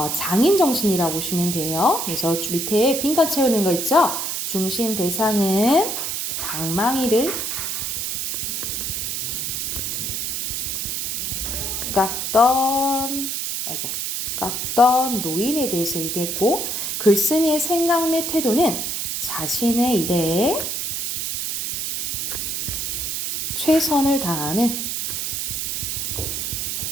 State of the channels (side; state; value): right; noise; hiss, 2 dB below the sound